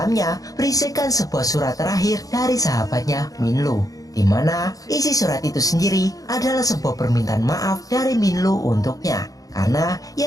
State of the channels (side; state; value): right; late; 0.17 ms